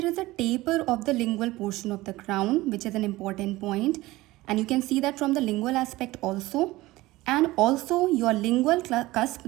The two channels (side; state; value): left; quieter; 18.7 dB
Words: is a taper of the lingual portion of the crown, which is an important point, and you can see that from the lingual aspect also. And also your lingual cusp,